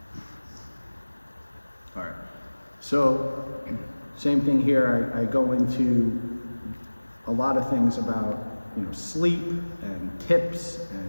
All right. So, same thing here. I go into a lot of things about, sleep and tips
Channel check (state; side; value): inverted; both; correlation -1.00